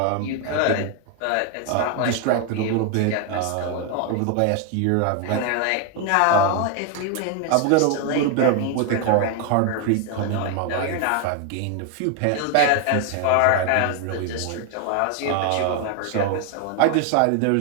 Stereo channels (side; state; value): both; different; correlation 0.00